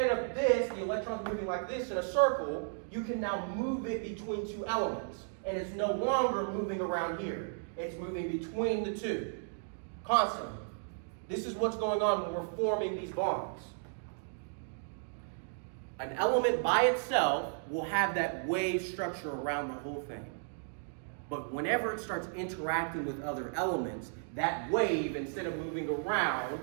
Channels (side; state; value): left; silent; digital silence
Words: of this, the electrons moving like this in a circle, you can now move it between two elements. And it's no longer moving around here. It's moving between the two, constantly. This is what's going on when we're forming these bonds. An element by itself will have that wave structure around the whole thing. But whenever it starts interacting with other elements, that wave, instead of moving around,